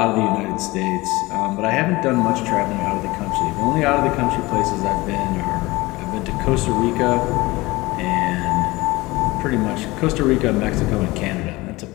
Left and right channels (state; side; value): quieter; right; 21.3 dB